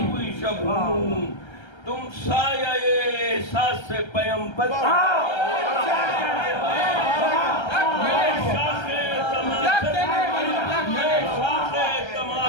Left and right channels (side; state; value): right; late; 1.3 ms